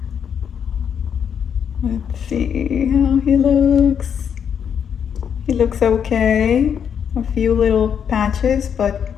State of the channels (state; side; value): quieter; right; 7.9 dB